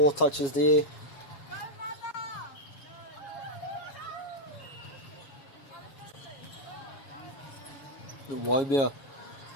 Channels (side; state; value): right; late; 7.3 ms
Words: touches there. Waimea